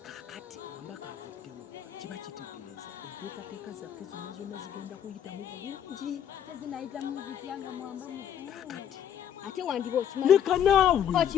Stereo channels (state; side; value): quieter; right; 9.6 dB